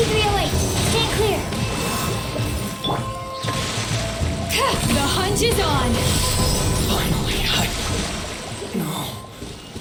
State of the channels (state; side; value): identical; both; correlation 1.00